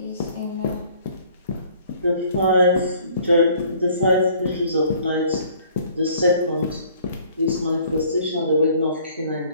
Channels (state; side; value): inverted; both; correlation -0.56